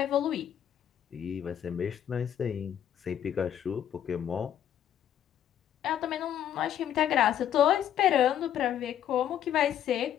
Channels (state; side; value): quieter; right; 10.2 dB